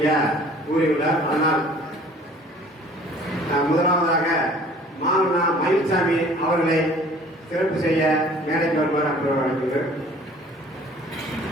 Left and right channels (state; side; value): normal; both; correlation 0.51